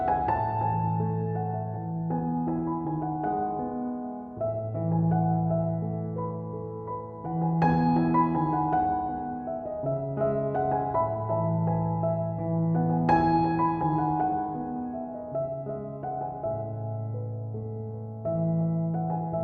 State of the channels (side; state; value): both; identical; correlation 1.00